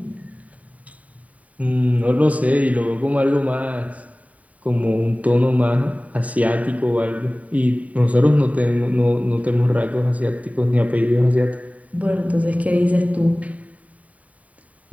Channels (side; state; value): left; late; 0.069 ms